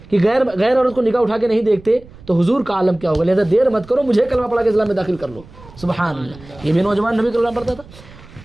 کہ غیر عورت کو نگاہ اٹھا کے نہیں دیکھتے تو حضور کا عالم کیا ہوگا. لہذا دیر مت کرو, مجھے کلمہ پڑھا کے اسلام میں داخل کر لو. سبحان اللہ. یہ بھی نوجوان نبی کلمہ پڑھتا تھا,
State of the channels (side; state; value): right; noise; rumble, 21 dB below the sound